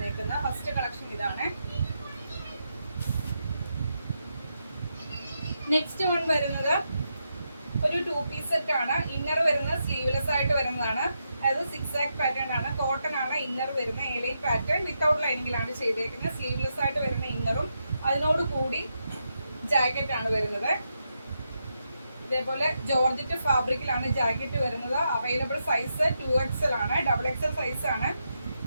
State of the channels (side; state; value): both; inverted; correlation -0.84